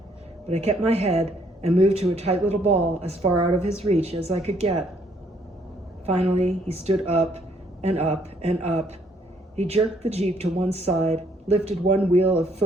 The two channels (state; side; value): normal; both; correlation 0.67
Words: but I kept my head and moved to a tight little ball as far out of his reach as I could get. Finally, he stood up and up and up. He jerked the Jeep to one side, lifted one wheel a